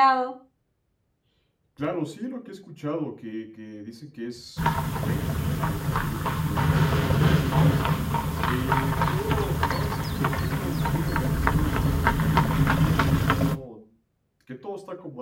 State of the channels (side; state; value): both; identical; correlation 1.00